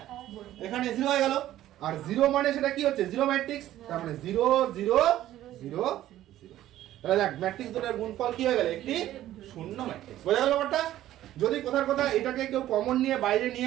এখানে 0 হয়ে গেল, আর 0 মানে সেটা কি হচ্ছে 0 ম্যাট্রিক্স, তার মানে 0 0 0 0, তাহলে দেখ ম্যাট্রিক্স দুটোর গুণফল কি হয়ে গেল একটি শূন্য ম্যাট্রিক্স, বোঝা গেল ব্যাপারটা। যদি কোথার কথা এটাকে কেউ কমন নিয়ে বাইরে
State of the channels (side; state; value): left; quieter; 13.5 dB